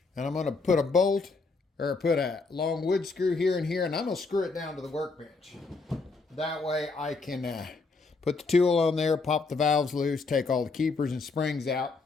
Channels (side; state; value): right; quieter; 4.0 dB